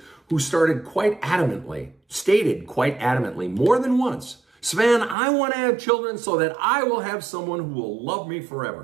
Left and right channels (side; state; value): left; drops out; at 5.2 s